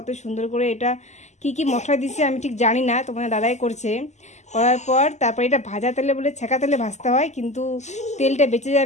সুন্দর করে এটা কি কি মশলা দিচ্ছে আমি ঠিক জানি না, তোমাদের দাদাই করছে। করার পর তারপর এটা ভাজা তেলে বলে ছেঁকা তেলে ভাজতে হয়, কিন্তু তেলটা বেঁচে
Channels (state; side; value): late; right; 0.33 ms